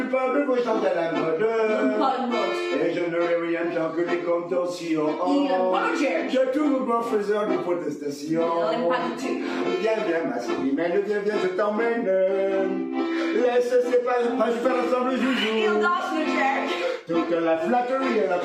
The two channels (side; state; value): both; identical; correlation 1.00